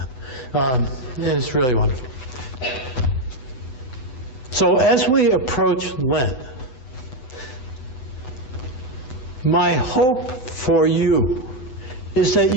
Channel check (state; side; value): late; right; 8.0 ms